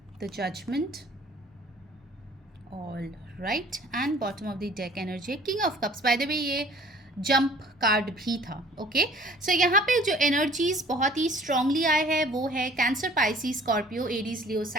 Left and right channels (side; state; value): both; normal; correlation 0.52